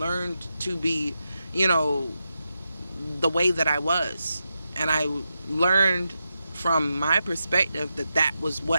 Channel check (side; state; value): both; inverted; correlation -0.88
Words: to be, the way that I was. And I learned from my perspective that was